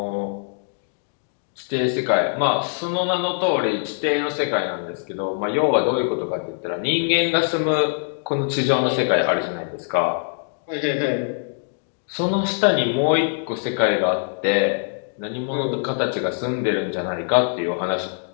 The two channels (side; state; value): right; silent; digital silence